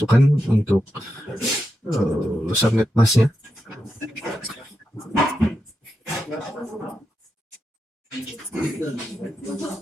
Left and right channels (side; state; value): both; normal; correlation 0.87